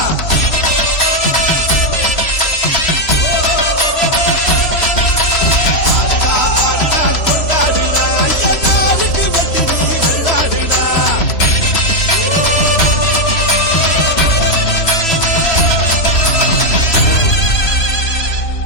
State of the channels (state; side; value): late; right; 3.0 ms